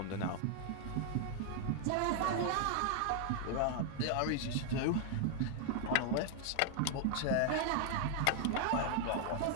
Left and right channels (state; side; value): different; both; correlation 0.00